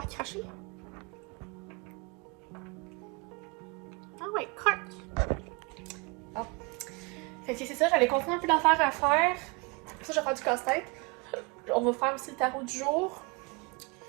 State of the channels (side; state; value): left; quieter; 29.5 dB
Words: recracher. Ah oui, croque. Bon. Fait que c'est ça, j'avais continué un peu d'affaires à faire. Ça, je vais faire du casse-tête. On va faire aussi le tarot du jour.